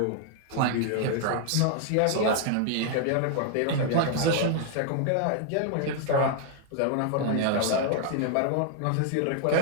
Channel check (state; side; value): different; both; correlation 0.00